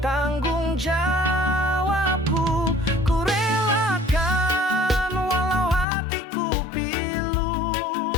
tanggung jawabku. Ku relakan walau hatiku pilu,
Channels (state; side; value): drops out; right; at 5.9 s